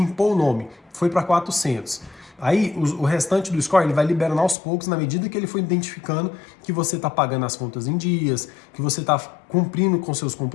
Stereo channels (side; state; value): right; drops out; at 4.5 s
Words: o nome, foi para 400. Aí o restante do score ele vai liberando aos poucos na medida que ele for identificando que você está pagando as contas em dias, que você está cumprindo com seus